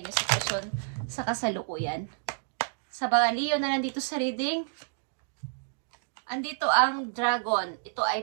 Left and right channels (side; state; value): left; silent; digital silence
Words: sitwasyon sa kasalukuyan. Sa mga Leo na nandito sa reading, andito ang dragon. Ito